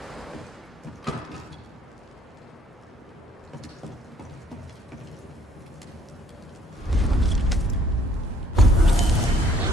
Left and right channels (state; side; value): normal; both; correlation 0.62